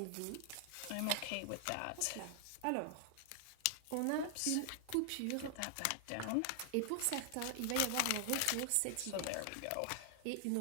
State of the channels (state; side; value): different; both; correlation 0.00